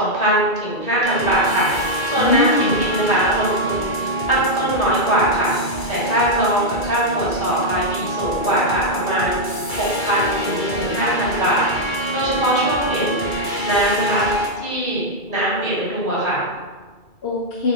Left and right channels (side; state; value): right; late; 2.3 ms